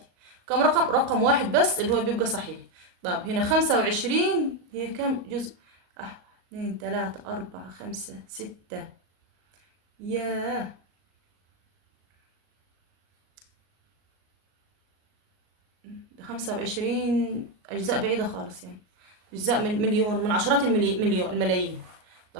كم رقم؟ رقم واحد بس اللي هو بيبقى صحيح. طب هنا 25 هي كم جزء؟ 2 3 4 5 6. ياه، 25 أجزاء بعيدة خالص يعني. أجزاء من مليون، من عشرات الملايين.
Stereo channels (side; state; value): left; late; 38 ms